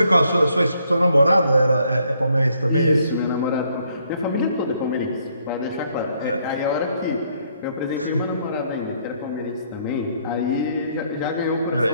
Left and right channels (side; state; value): both; inverted; correlation -0.70